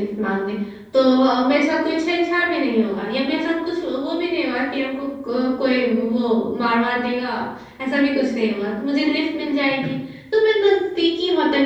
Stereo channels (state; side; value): identical; both; correlation 1.00